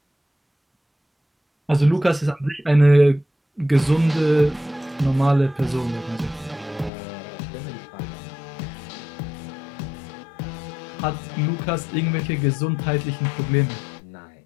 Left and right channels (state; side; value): drops out; right; at 6.9 s